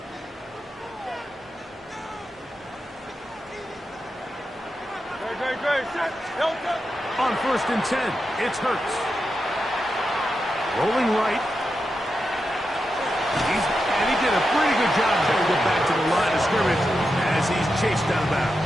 On first and 10, it's Hurts. Rolling right. And he did a pretty good job trying to get back to the line of scrimmage as he's chased out of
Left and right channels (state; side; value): normal; both; correlation 0.88